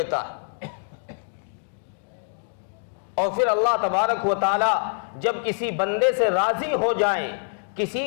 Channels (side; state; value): right; silent; digital silence